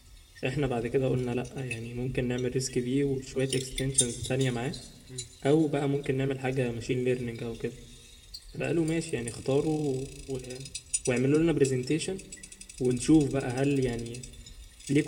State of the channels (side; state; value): both; identical; correlation 1.00